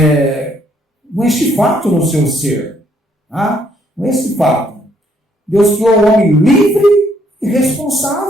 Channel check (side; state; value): both; normal; correlation 0.69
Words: com este fato no seu ser. Com esse fato. Deus criou o homem livre e